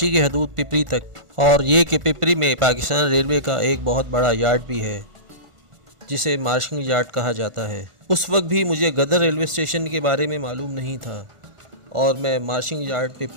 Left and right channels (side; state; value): left; late; 1.5 ms